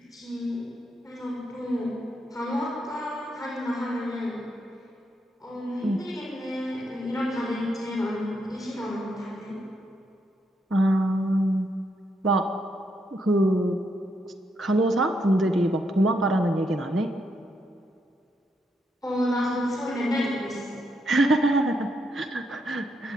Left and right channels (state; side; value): normal; both; correlation 0.79